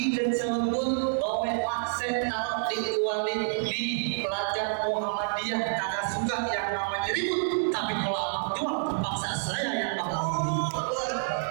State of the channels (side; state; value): left; silent; 59 dB below the other